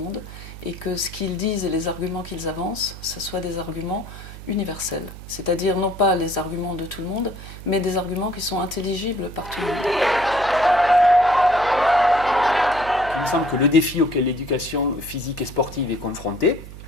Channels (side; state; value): right; noise; hum, 14 dB below the sound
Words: et que ce qu'ils disent et les arguments qu'ils avancent, ce soient des arguments universels, c'est-à-dire non pas les arguments de tout le monde, mais des arguments qui sont intelligibles par tout le monde. Il me semble que le défi auquel l'éducation physique et sportive est confrontée,